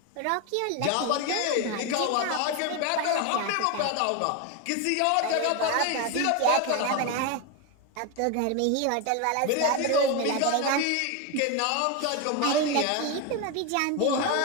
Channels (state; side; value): different; both; correlation 0.02